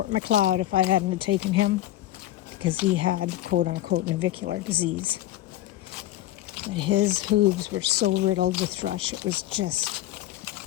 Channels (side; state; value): right; quieter; 14.4 dB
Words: Macleod if I hadn't have taken him, because he had quote-unquote navicular disease. But his hooves were so riddled with thrush, it was just